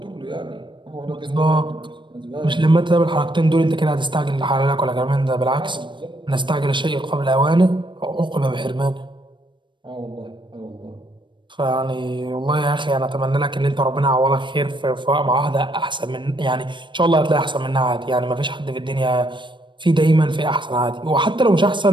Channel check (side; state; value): left; late; 0.23 ms